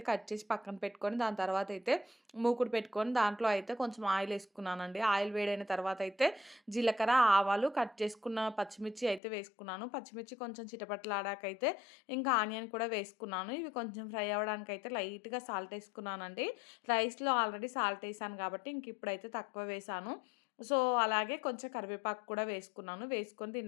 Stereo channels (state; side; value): drops out; right; at 9.2 s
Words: కట్ చేసి పక్కన పెట్టుకొని దాని తర్వాతయితే మూకుడు పెట్టుకొని దాంట్లో అయితే కొంచెం ఆయిలేసుకున్నానండి. ఆయిల్ వేడైన తర్వాతయితే జీలకర్ర, ఆవాలు, కట్ చేసుకున్న పచ్చిమిర్చి అయితే వేసుకున్నాను. పచ్చిమిర్చి కొంచెం చిటపటలాడాకైతే ఇంకా ఆనియన్ కూడా వేసుకున్నాను. ఇవి కొంచెం ఫ్రై అవ్వడానికైతే లైట్‌గా సాల్ట్ ఏసుకున్నానండి. రైస్‌లో ఆల్రెడీ సాల్ట్ ఏసాను కాబట్టి ఇంక ఇప్పుడైతే తక్కువ వేశాను. సో, అలాగే కొంచెం కరివేపాకు కూడా వేసుకున్నాను. వేసుకొని